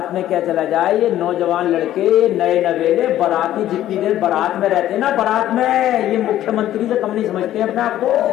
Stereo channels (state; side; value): quieter; right; 12.9 dB